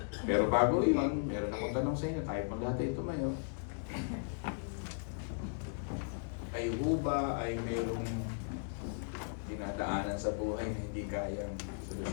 Pero bago yun, meron akong tanong sa inyo. Tayo pang dati tumayo. Ay ba ay mayroong dinadaanan sa buhay na hindi kayang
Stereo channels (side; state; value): right; silent; digital silence